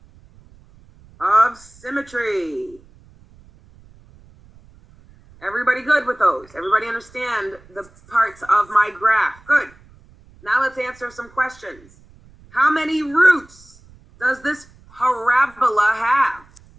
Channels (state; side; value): noise; right; rumble, 26 dB below the sound